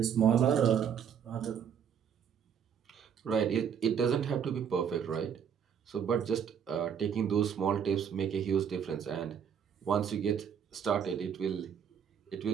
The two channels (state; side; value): quieter; left; 7.9 dB